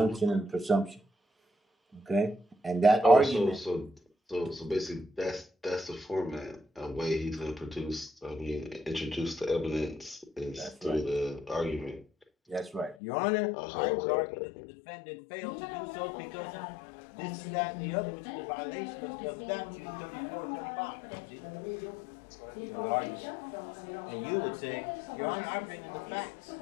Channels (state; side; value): drops out; right; at 13.0 s